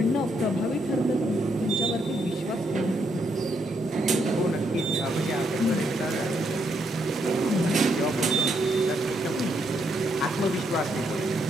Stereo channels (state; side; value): normal; both; correlation 0.76